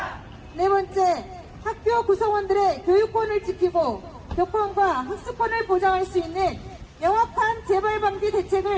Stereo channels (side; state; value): both; identical; correlation 1.00